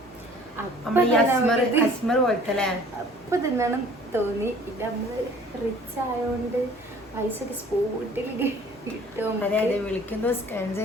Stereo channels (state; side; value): normal; both; correlation 0.51